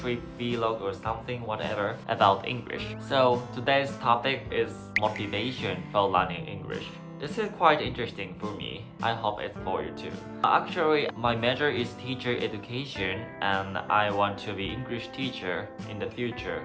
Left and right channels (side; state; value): both; identical; correlation 1.00